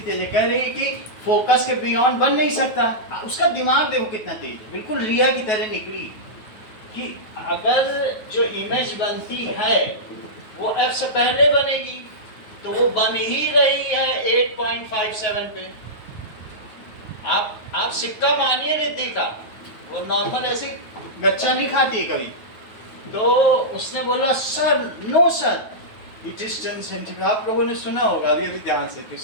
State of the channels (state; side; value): late; right; 9.3 ms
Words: तेज है, कह रही है कि फोकस के बियॉन्ड बन नहीं सकता। उसका दिमाग देखो कितना तेज है, बिल्कुल रिया की तरह निकली कि अगर जो इमेज बनती है वो f से पहले बनेगी, तो वो बन ही रही है 8.57 पे। आप सिक्का मानिए रिद्धि का, वो नॉर्मल ऐसे गच्चा नहीं खाती है कभी। तो उसने बोला sir, no sir, it is 10 centimetre. आप लोगों ने सुना होगा अभी अभी ध्यान से, तो